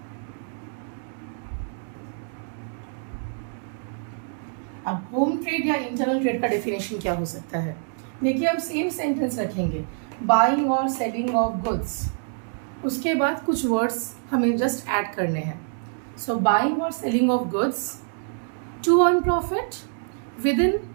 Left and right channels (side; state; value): left; silent; 61 dB below the other